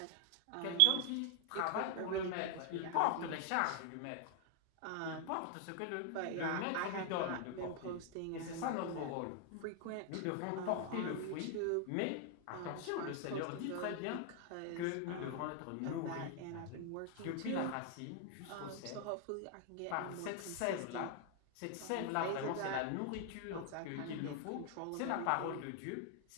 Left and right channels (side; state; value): both; different; correlation 0.00